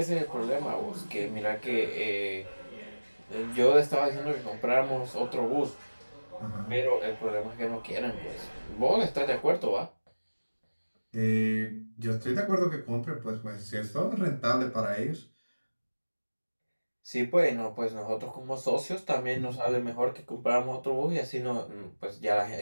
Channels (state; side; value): inverted; both; correlation -1.00